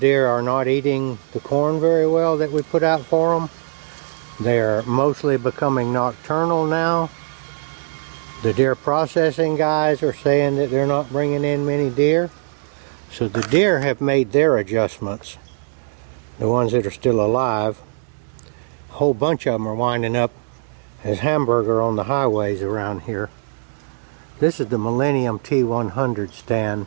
are not eating the corn very well that we put out for them. They are mostly becoming nocturnal now. The deer processing guys are saying that they're not bringing in many deer. So the deer have made their adjustments. The ones that are still alive. A whole bunch of them are winding up as hamburger on the highways around here. This is the Millennium T-100 stand.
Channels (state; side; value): silent; left; 65 dB below the other